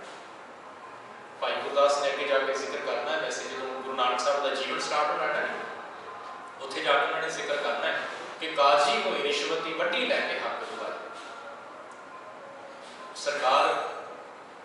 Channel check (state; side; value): identical; both; correlation 1.00